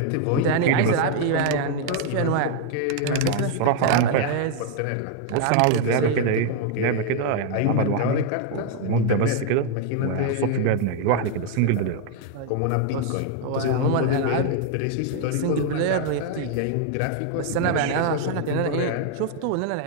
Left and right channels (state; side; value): different; both; correlation 0.00